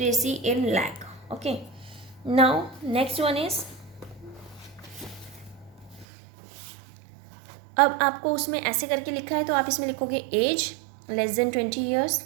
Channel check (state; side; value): drops out; left; at 6.1 s